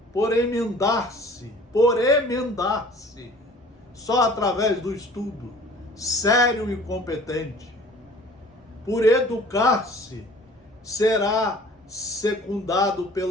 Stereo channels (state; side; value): normal; both; correlation 0.49